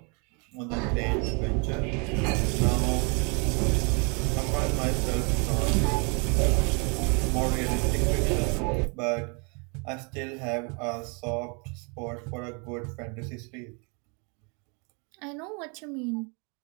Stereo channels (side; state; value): left; quieter; 33.8 dB